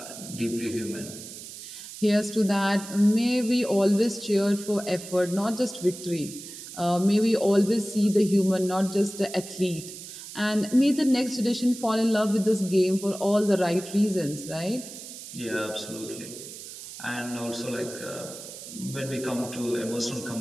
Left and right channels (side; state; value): right; noise; hiss, 13 dB below the sound